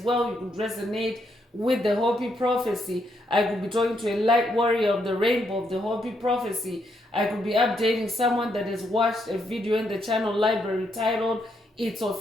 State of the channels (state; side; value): normal; both; correlation 0.77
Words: You could resonate with the Hopi prophecy. I could be talking to a light warrior of the rainbow of the Hopi prophecy. I could be updating someone that has watched a video in the channel library titled It's